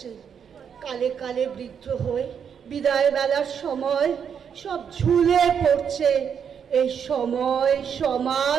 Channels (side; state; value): left; quieter; 7.5 dB